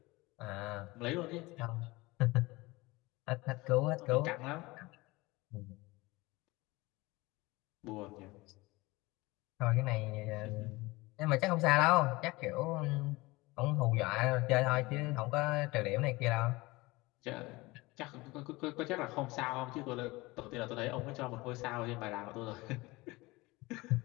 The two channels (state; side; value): quieter; right; 22.0 dB